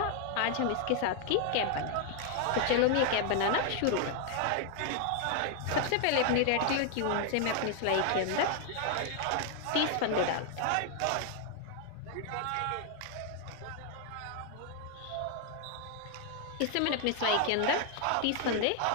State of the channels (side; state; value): both; different; correlation 0.00